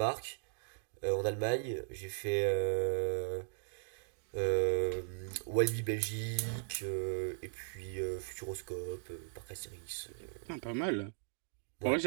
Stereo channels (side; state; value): left; silent; digital silence